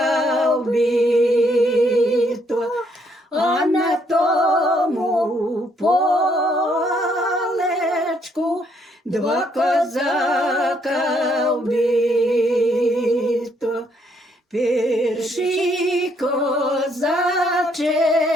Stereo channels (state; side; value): normal; both; correlation 0.71